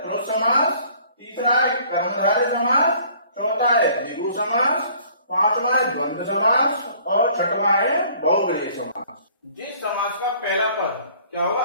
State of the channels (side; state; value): both; inverted; correlation -0.55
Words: समास, तीसरा है कर्मधारय समास, चौथा है द्विगु समास, पांचवा है द्वंद्व समास और छठवा है बहुव्रीहि समास। जिस समास का पहला पद क्या होगा?